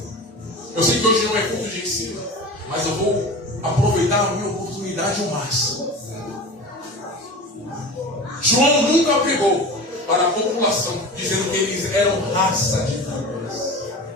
Eu sei que hoje não é culto de ensino, mas eu vou aproveitar a minha oportunidade ao máximo. João nunca pregou para a população, dizendo que eles eram raça de víboras.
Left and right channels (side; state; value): both; normal; correlation 0.33